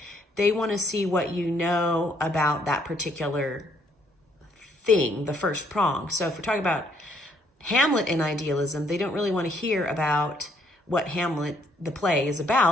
They want to see what you know about that particular thing, the first prong. So if we're talking about Hamlet and idealism, they don't really want to hear about what Hamlet, the play, is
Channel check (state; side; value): normal; both; correlation 0.68